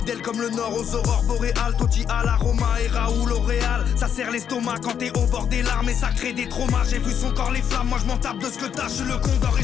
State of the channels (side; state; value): right; quieter; 8.3 dB